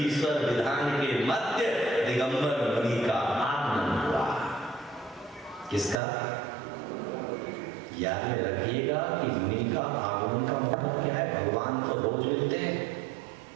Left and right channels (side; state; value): left; drops out; at 6.0 s